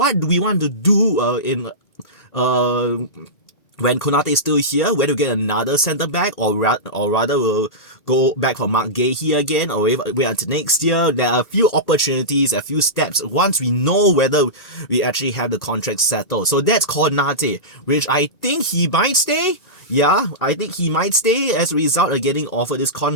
do we want to do when Konate is still here, whether we get another centre back or rather we'll go back for Mark Gahey again or wait until next year. There are a few opportunities, a few steps once we know whether we actually have the contract settled. So that's Konate, which I think he might stay. Yeah, I think he might stay as a result of getting offered this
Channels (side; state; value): right; late; 1.8 ms